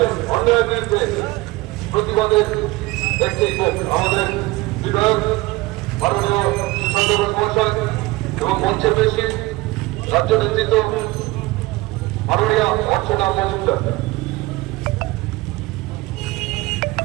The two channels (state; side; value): quieter; left; 20.8 dB